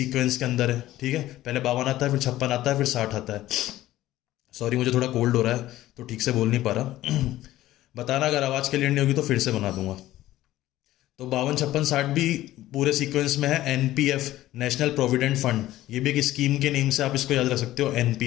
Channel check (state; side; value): quieter; right; 15.0 dB